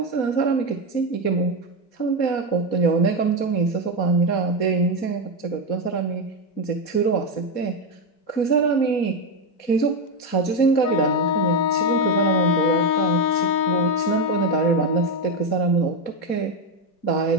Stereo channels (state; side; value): late; right; 4.2 ms